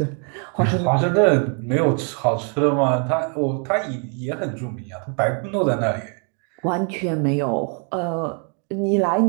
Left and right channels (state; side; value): quieter; left; 39.5 dB